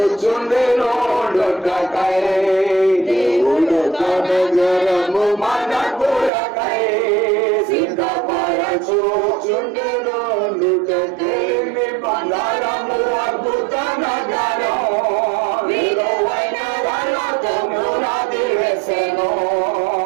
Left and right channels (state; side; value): drops out; left; at 6.3 s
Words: నొట్టకై దేవుడు నగరము మన కొరకై సిద్ధపరచుచుండెను నొట్టకై బంగారము అద్భుత నగరం విలువైన రాళ్ళతో పునాది వేసెను